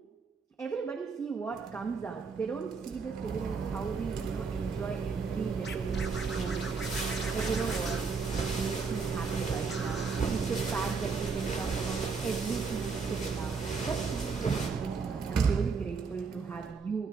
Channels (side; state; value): left; quieter; 5.0 dB